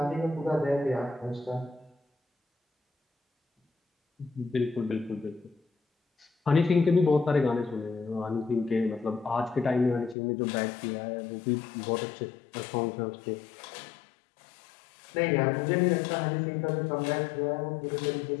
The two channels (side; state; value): right; drops out; at 10.2 s